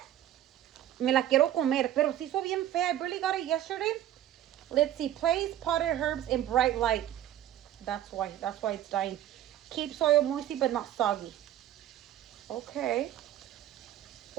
me la quiero comer. Pero se hizo bien fea. I barely got it yesterday. Let's see. Place potted herbs in bright light. That's why it's dying. Keep soil moisty but not soggy. Okay.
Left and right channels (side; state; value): left; quieter; 12.1 dB